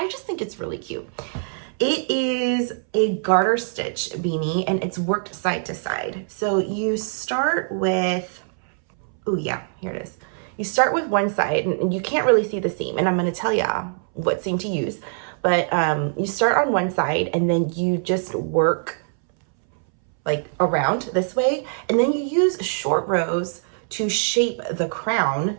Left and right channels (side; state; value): left; silent; 63 dB below the other